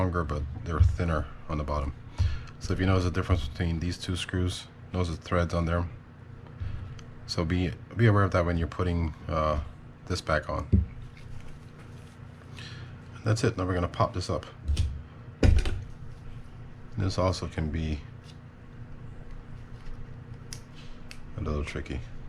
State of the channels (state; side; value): identical; both; correlation 1.00